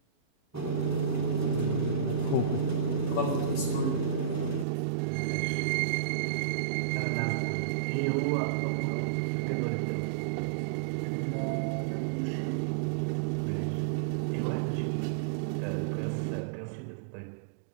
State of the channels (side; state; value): left; drops out; at 4.7 s